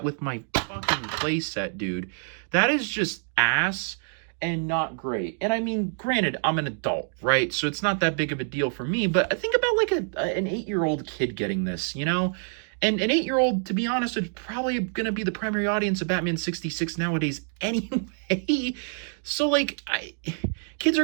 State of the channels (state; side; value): silent; left; 61 dB below the other